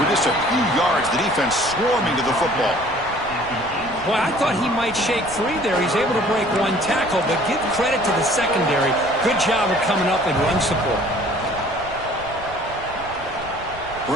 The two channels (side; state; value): right; noise; rumble, 17 dB below the sound